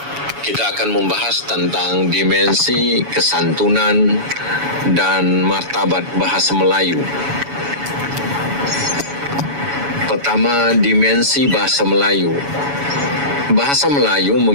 Kita akan membahas tentang dimensi kesantunan dan martabat bahasa Melayu. Pertama, dimensi bahasa Melayu. Bahasa Melayu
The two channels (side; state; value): left; late; 7.1 ms